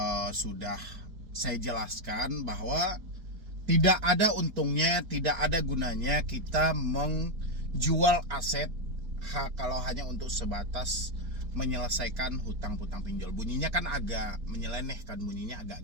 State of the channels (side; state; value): left; late; 4.5 ms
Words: sudah saya jelaskan bahwa tidak ada untungnya, tidak ada gunanya kita menjual aset kalau hanya untuk sebatas menyelesaikan hutang-hutang pinjol. Bunyinya kan agak menyeleneh kan, bunyinya